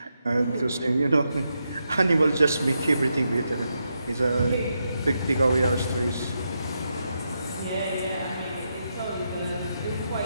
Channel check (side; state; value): both; inverted; correlation -0.84